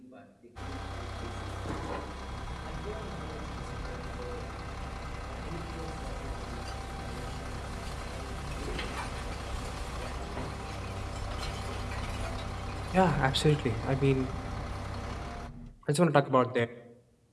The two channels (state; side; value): identical; both; correlation 1.00